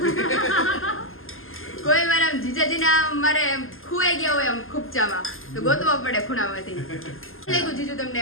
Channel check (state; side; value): late; right; 0.60 ms